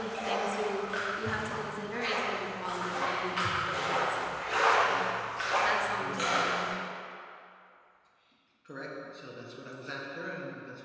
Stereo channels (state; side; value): identical; both; correlation 1.00